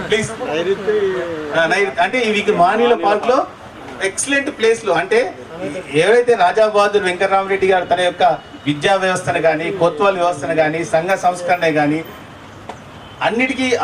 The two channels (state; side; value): identical; both; correlation 1.00